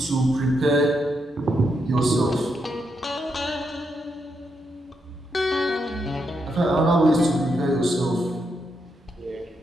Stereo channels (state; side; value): normal; both; correlation 0.81